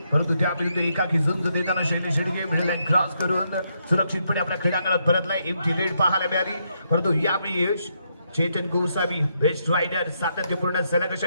परंतु त्याविरुद्ध एकाकी झुंज देताना Shailesh Shelke middle line cross करून सुरक्षितपणे आपल्या क्रीडांगणात परतलाय. एमटी रेड पाहायला मिळाली, परंतु यावेळी चेतन गोसावी बेस्ट रायडर सातत्यपूर्ण सलग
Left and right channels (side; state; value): both; inverted; correlation -0.78